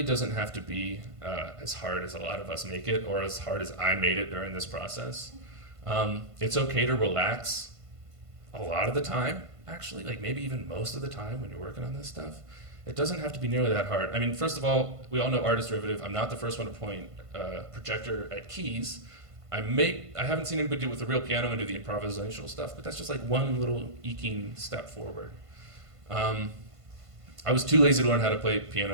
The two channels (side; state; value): left; late; 1.5 ms